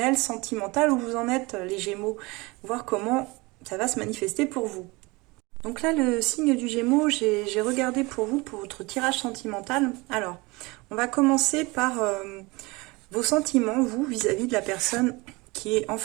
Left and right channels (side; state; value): left; quieter; 24.4 dB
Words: sentimental, où vous en êtes les Gémeaux, voir comment ça va se manifester pour vous. Donc là, le signe du Gémeaux, j'ai regardé pour vous, pour votre tirage sentimental. Alors, on va commencer par vos sentiments, vous, vis-à-vis de la personne qui est en